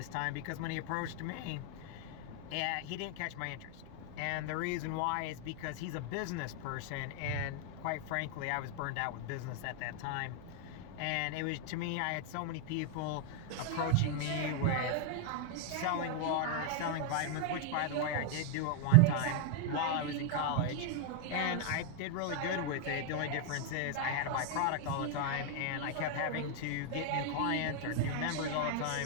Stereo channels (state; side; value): different; both; correlation 0.00